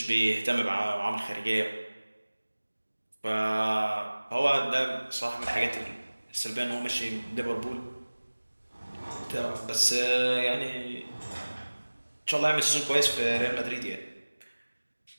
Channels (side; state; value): both; inverted; correlation -1.00